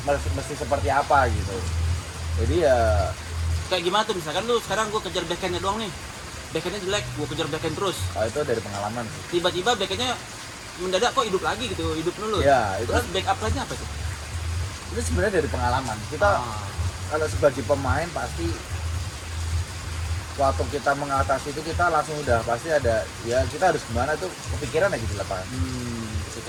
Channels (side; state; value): both; identical; correlation 1.00